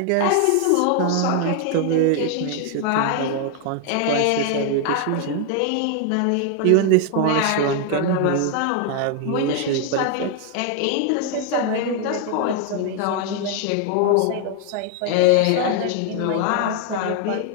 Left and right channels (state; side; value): different; both; correlation 0.00